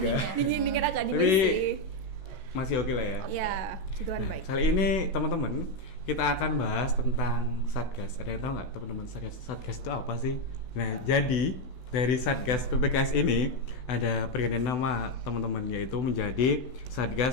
Kak? ya. Dingin agak dingin Tapi sih. masih oke lah ya. Ya, situan Nah, baik. kali ini teman-teman kita akan bahas tentang Satgas. Ada yang tahu nggak teman-teman Satgas? Satgas itu apa sih? Nah, jadi dari Satgas PPKS ini ada pergantian nama teman-teman, yaitu menjadi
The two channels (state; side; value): late; right; 16 ms